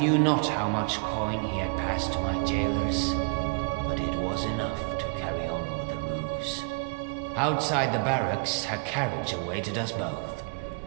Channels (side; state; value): left; quieter; 36.6 dB